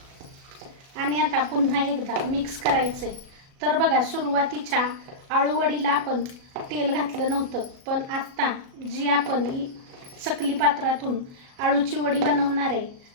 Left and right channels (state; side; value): late; left; 37 ms